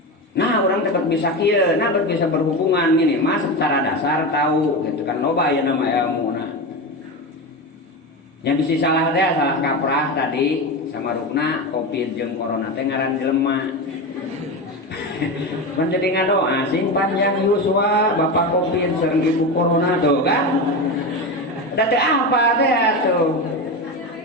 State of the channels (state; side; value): normal; both; correlation 0.20